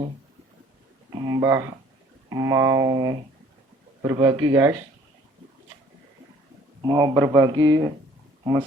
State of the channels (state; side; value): normal; both; correlation 0.56